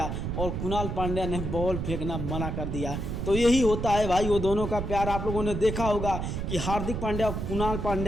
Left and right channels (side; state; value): right; noise; rumble, 3 dB below the sound